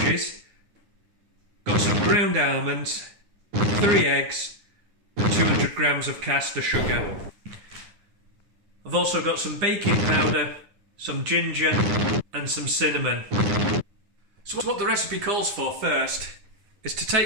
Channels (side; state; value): left; late; 9.8 ms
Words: got some ground almonds, 3 eggs, and 200 grams of caster sugar. I've also got some baking powder, some ginger, and some cinnamon. So what the recipe calls for first is to